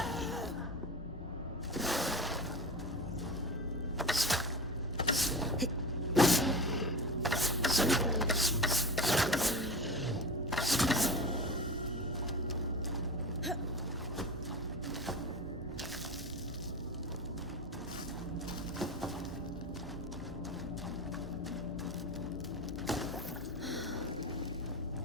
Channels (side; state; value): both; normal; correlation 0.29